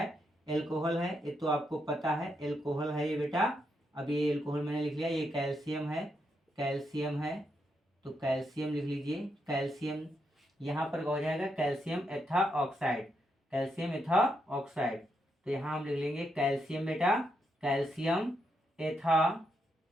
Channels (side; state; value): both; normal; correlation 0.81